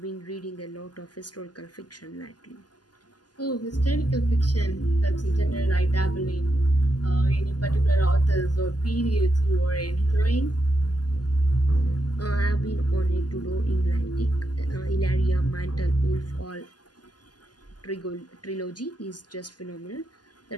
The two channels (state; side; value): late; right; 0.70 ms